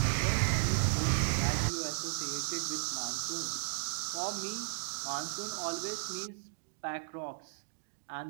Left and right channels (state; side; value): silent; left; digital silence